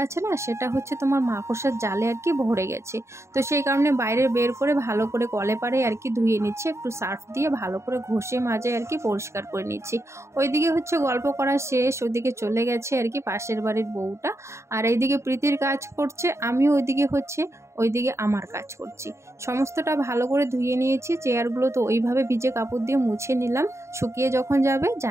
আছে না, সেটা হচ্ছে তোমার মাকড়সার জালে আর কি ভরে গেছে। তো সেই কারণে বাইরে বের করে ভালো করে কলে পারে আর কি ধুয়ে নিচ্ছি, একটু সার্ফ দিয়ে ভালো করে ঘষে মাজে আর কি পরিষ্কার করে নিচ্ছি। ওইদিকে হচ্ছে গল্প করা শেষ, ওইদিকে চলে গেছে আর কি পাশের বাড়ির বউটা, আর এইদিকে প্রীতির কাজ করছে, আমিও ওইদিকে আমার কাজ করছি। সমস্তটা ভালো করে ধুয়ে নিয়েছি, চেয়ারগুলো তো ওইভাবে ভিজে কাপড় দিয়ে মুছে নিলাম, শুকিয়ে যখন যাবে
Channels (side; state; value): left; late; 0.14 ms